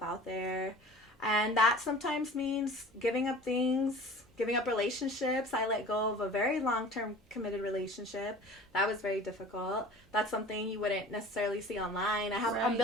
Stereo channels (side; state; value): both; normal; correlation 0.43